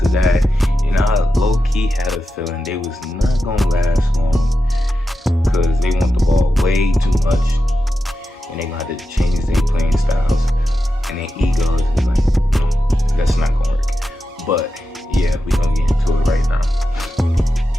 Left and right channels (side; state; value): both; normal; correlation 0.90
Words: that, and I low-key had a feeling they was not gonna last long because they want the ball way too much, and they gonna have to change their playing styles, and their egos is like, that's not gonna work. But yeah, we gonna get into it right now.